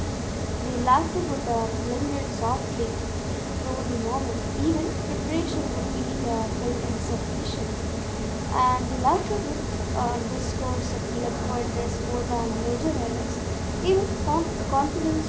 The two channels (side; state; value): both; identical; correlation 1.00